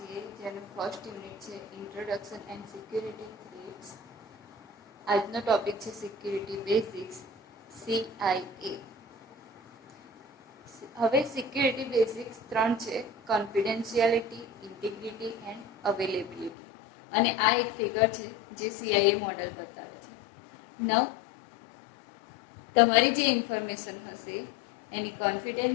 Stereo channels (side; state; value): right; drops out; at 16.5 s